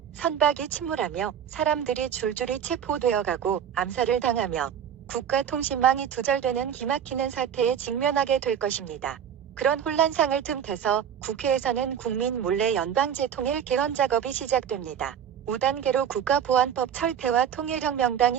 선박이 침몰하며 사람들이 줄줄이 체포되어가고 암살을 당하며 국가통신망이 두절되는 기막히는 사태에 직면하게 될 것입니다. 그런 혼란상을 틈타서 국회에서는 국민 몰래 연방제통일 개헌 작업이 시작됩니다. 5단계로 국가보안법 철폐와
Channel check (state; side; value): quieter; left; 8.7 dB